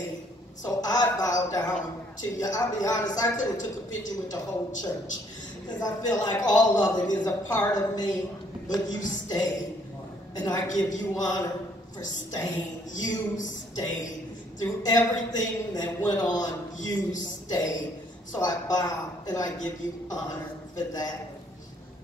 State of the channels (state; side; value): normal; both; correlation 0.65